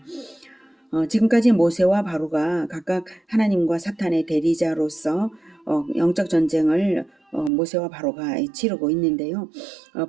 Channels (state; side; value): drops out; left; at 7.5 s